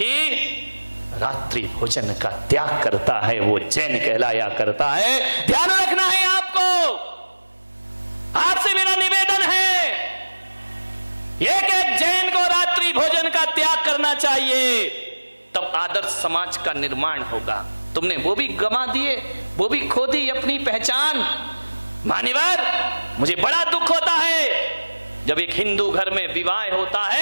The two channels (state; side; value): inverted; both; correlation -1.00